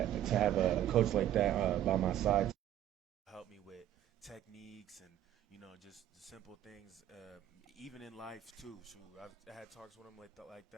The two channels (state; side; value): quieter; left; 11.7 dB